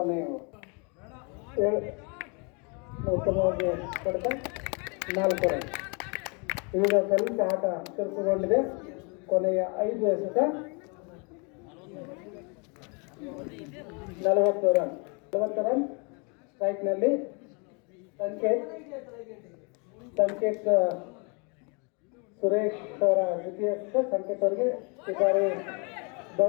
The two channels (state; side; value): quieter; right; 33.8 dB